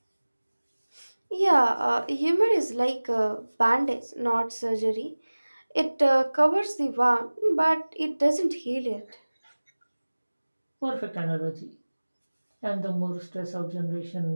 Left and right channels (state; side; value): inverted; both; correlation -1.00